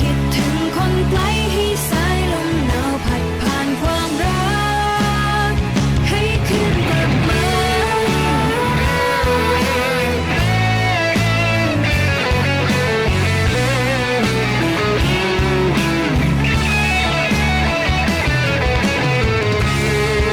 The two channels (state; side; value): identical; both; correlation 1.00